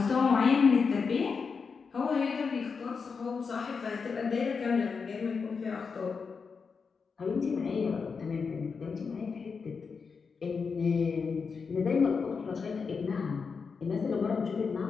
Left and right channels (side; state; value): right; quieter; 5.3 dB